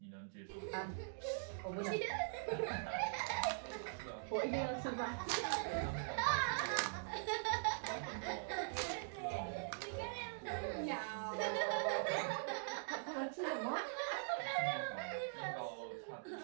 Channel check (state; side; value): silent; left; digital silence